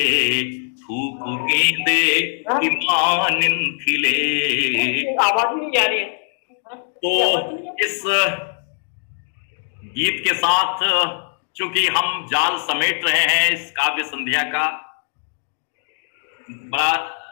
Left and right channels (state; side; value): silent; right; digital silence